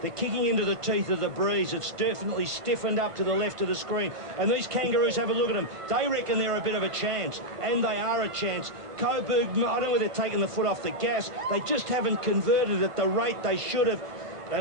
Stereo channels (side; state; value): left; late; 1.3 ms